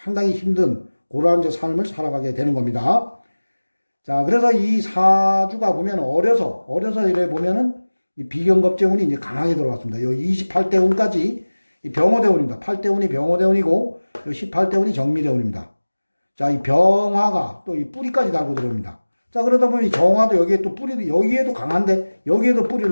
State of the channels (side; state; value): both; inverted; correlation -1.00